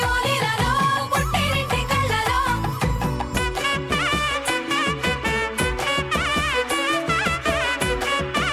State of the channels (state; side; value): identical; both; correlation 1.00